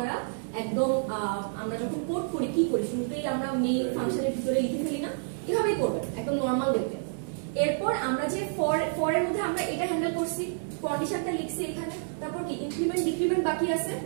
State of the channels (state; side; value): silent; left; 59 dB below the other